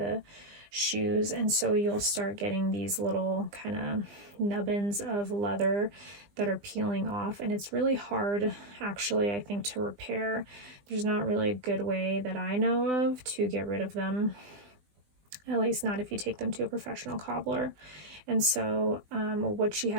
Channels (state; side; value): late; left; 20 ms